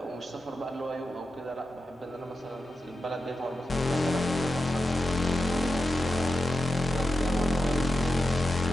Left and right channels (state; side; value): normal; both; correlation 0.90